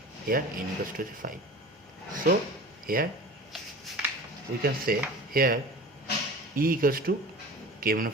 Here n equals to 5. So here we can say here E equals to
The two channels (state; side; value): normal; both; correlation 0.38